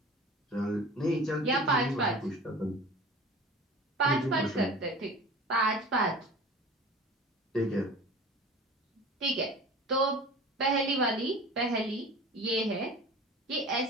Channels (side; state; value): both; normal; correlation 0.39